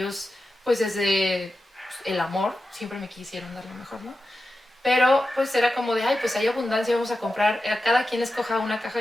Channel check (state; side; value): normal; both; correlation 0.92